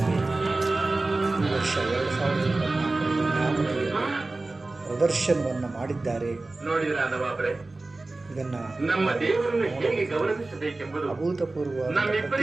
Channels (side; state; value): left; quieter; 3.2 dB